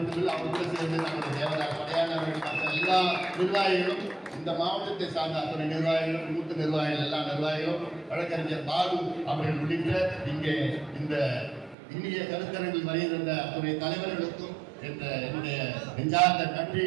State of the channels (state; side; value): drops out; left; at 11.8 s